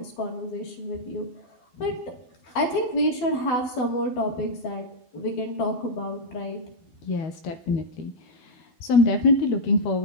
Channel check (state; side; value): late; right; 12 ms